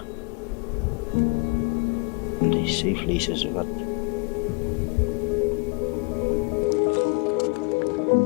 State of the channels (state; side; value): quieter; right; 32.6 dB